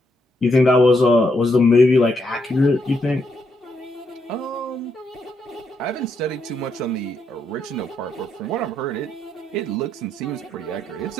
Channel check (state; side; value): normal; both; correlation 0.78